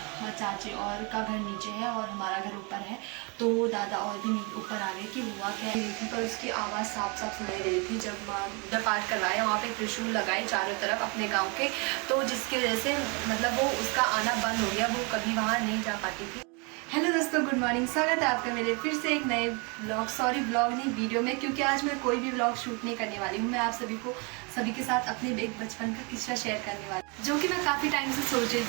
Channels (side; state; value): left; quieter; 31.6 dB